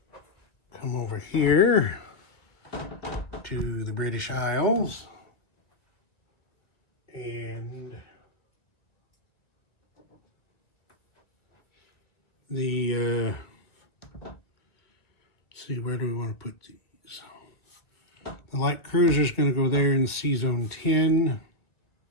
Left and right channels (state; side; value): late; right; 1.8 ms